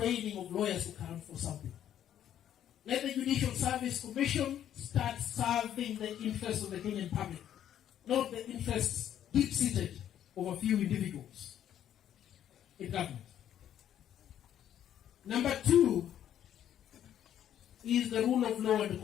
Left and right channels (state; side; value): quieter; right; 10.6 dB